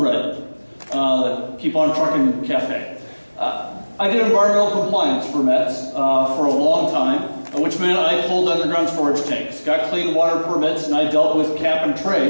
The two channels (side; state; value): both; inverted; correlation -1.00